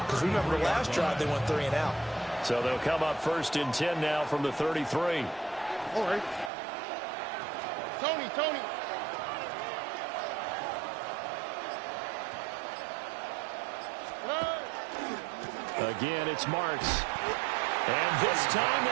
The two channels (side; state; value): left; drops out; at 6.5 s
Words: Because remember the last drive, they went 3 and out. So they'll come up 1st and 10 now from the 33. All right. Tony. Again, it's Marks. And this time